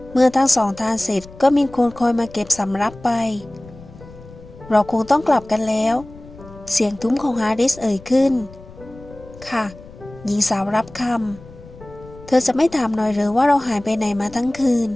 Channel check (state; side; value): noise; left; rumble, 19 dB below the sound